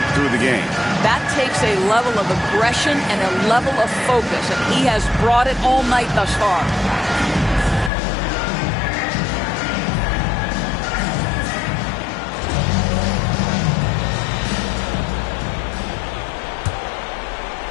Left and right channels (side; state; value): right; drops out; at 7.9 s